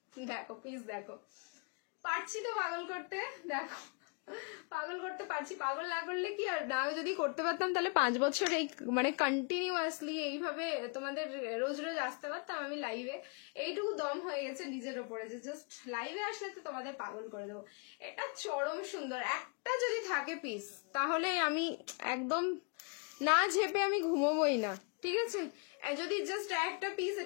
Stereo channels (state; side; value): quieter; right; 36.4 dB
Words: দেখো প্লিজ দেখো, পারছি তো পাগল করতে, দেখো পাগল করতে পারছি। পাগল না করলে কি, আর না যদি করতে পারতাম তাহলে 5 বছর এই মানে কন্টিনিউয়াসলি এইভাবে তোমাদের রোজ রোজ আসতে পারতাম আমি লাইভে। এইটুকু দম হয়ে গেছে নিজের ওপরে যে জাস্ট লাইভে আসলে তো তোমাদের পাগল করে দেবো। এটা চরম সুন্দর, একটা যদি থাকে পিস তাহলে আমি একদম না ঝেপে আমি ঘুমোবই না। ঠিক আছে, যদি জাস্ট একটা পিস